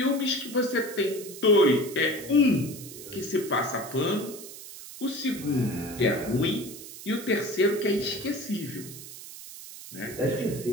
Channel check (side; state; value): right; noise; hiss, 14 dB below the sound